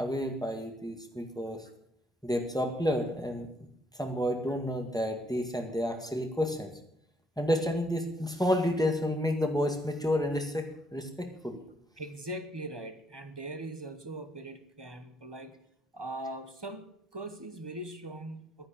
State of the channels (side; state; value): both; normal; correlation 0.72